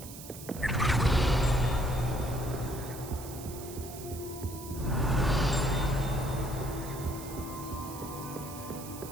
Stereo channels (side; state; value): right; noise; hiss, 13 dB below the sound